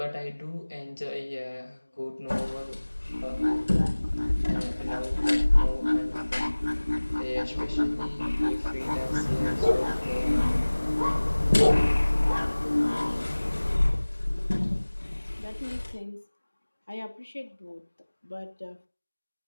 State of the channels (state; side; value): inverted; both; correlation -1.00